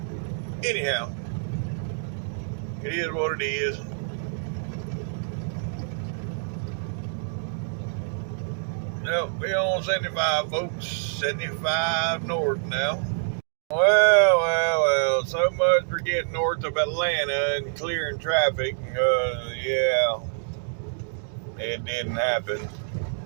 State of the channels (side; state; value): left; silent; digital silence